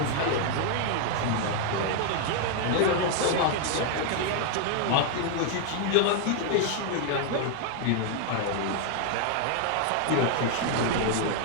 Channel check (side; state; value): both; different; correlation 0.00